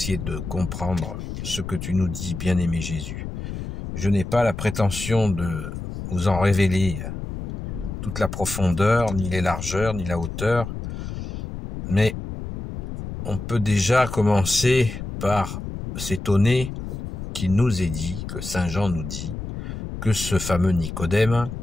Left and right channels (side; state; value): left; noise; rumble, 7 dB below the sound